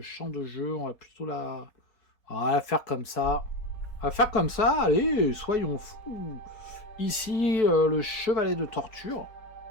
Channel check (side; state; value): right; late; 4.6 ms